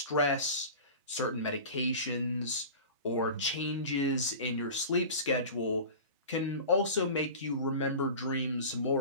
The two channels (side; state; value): both; inverted; correlation -0.35